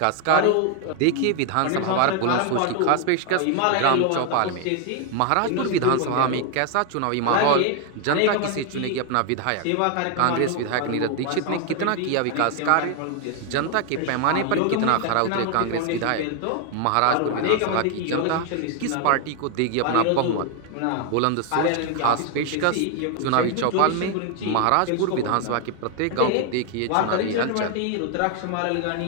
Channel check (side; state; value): both; different; correlation 0.01